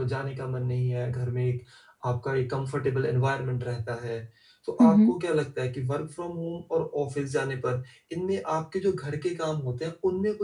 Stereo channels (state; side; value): identical; both; correlation 1.00